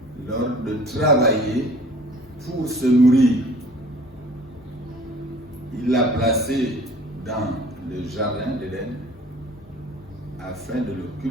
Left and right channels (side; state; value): both; normal; correlation 0.49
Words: l'ordre de travailler pour se nourrir. Il l'a placé dans le jardin d'Éden afin de le